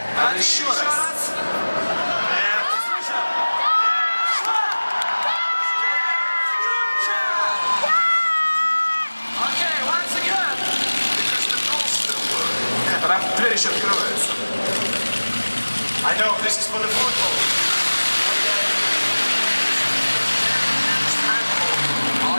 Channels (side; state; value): both; inverted; correlation -1.00